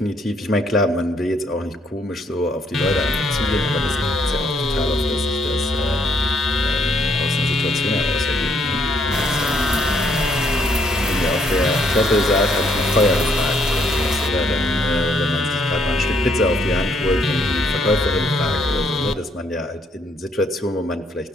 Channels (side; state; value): both; normal; correlation 0.70